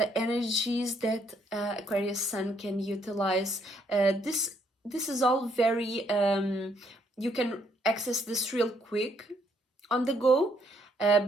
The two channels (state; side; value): normal; both; correlation 0.71